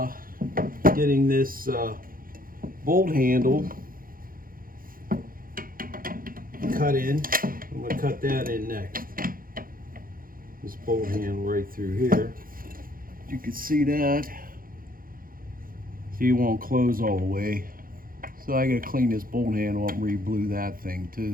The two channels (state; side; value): late; left; 0.41 ms